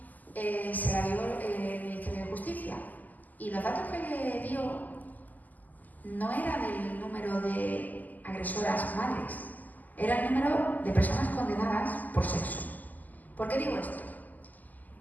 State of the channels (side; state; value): right; late; 0.082 ms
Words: se la dio el Ministerio de Justicia, y los datos que le dio no era del número de agresoras madres, era el número de personas condenadas por sexo. ¿Por qué digo esto?